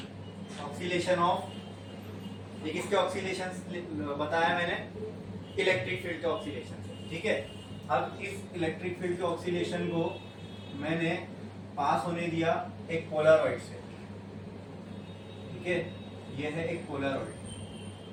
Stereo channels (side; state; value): both; identical; correlation 1.00